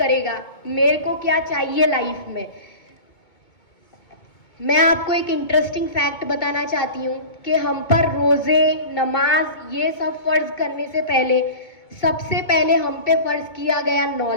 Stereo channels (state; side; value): late; right; 2.2 ms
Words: मेरे को क्या चाहिए लाइफ में। मैं आपको एक इंटरेस्टिंग फैक्ट बताना चाहती हूँ कि हम पर रोज़े, नमाज, ये सब फ़र्ज़ करने से पहले सबसे पहले हम पे फ़र्ज़ किया गया